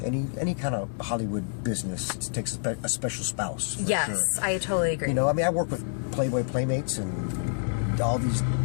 Any kind of Hollywood business, it takes a special spouse. Yes, sure. I totally agree. You know, I mean, I work with Playboy Playmates and all these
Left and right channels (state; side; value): silent; right; digital silence